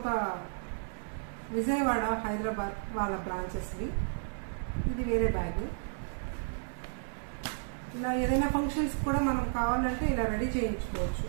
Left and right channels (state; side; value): silent; left; 56 dB below the other